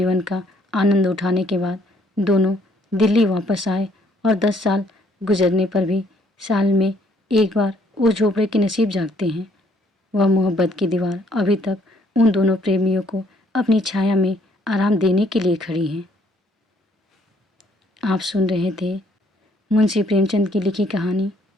का आनंद उठाने के बाद दोनों दिल्ली वापस आए और 10 साल गुजरने पर भी साल में एक बार वो झोपड़े के नसीब जागते हैं। वह मोहब्बत की दीवार अभी तक उन दोनों प्रेमियों को अपनी छाया में आराम देने के लिए खड़ी है। आप सुन रहे थे मुंशी प्रेमचंद की लिखी कहानी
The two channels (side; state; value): both; normal; correlation 0.65